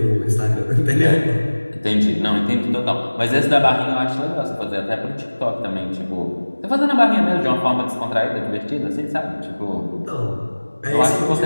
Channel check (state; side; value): inverted; both; correlation -1.00